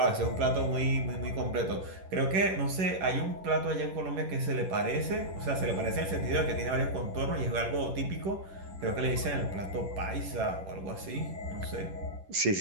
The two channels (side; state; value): left; late; 11 ms